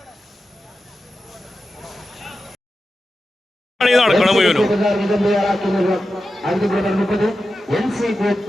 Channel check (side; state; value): both; normal; correlation 0.91